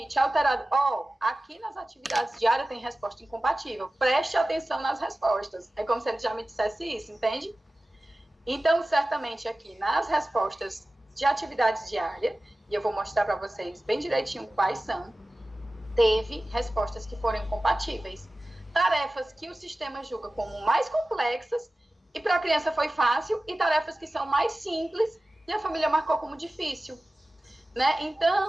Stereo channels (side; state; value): both; normal; correlation 0.96